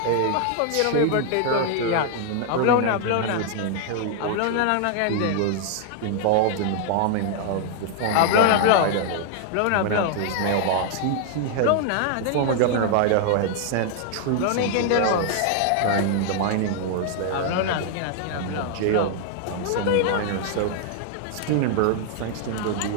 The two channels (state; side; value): different; both; correlation 0.00